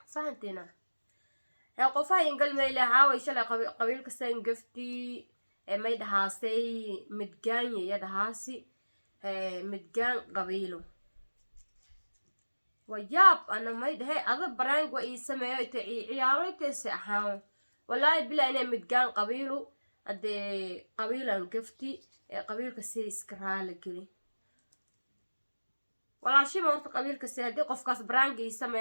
fahantina ya qofa in galmay leeyahay shalay qabiilka san gafti may dhahaasay midgaan ya dhahaasi midgaan qabiilo wayaab ana may dhahay ada barang wa isameeyo ciyaaraytay ahaan wallahi bila inay midgaan qabiilo ade qabiilan gafti qabiilka si iska raali gali walaashii ma horta qabiilka si hadii qofkaas barang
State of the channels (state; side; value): inverted; both; correlation -1.00